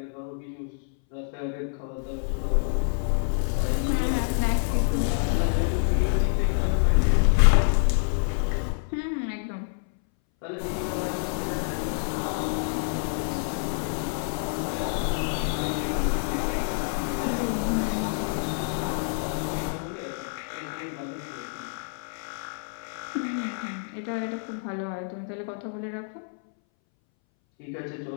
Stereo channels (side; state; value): right; silent; 60 dB below the other